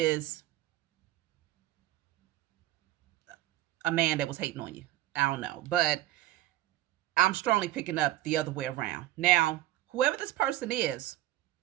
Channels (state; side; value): quieter; left; 15.3 dB